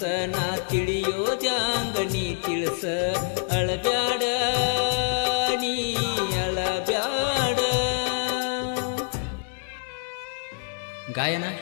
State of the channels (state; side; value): silent; right; digital silence